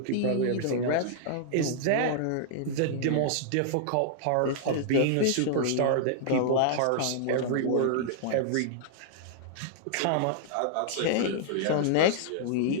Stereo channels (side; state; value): both; different; correlation -0.01